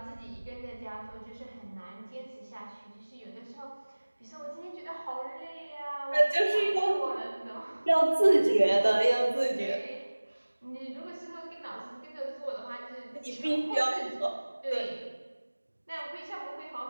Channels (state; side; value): inverted; both; correlation -1.00